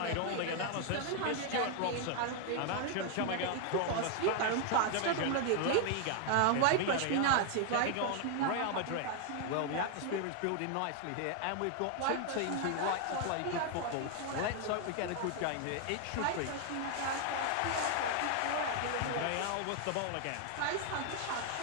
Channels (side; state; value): both; different; correlation 0.00